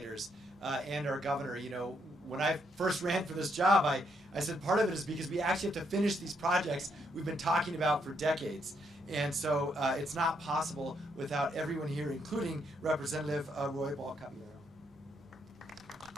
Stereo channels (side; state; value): both; normal; correlation 0.75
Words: and our governor, you know, when I first ran for this job, I said part of it is because we actually have to finish these projects we've been talking about for decades. And so it's not possible without everyone here, including Representative Roy Ball-Caballero.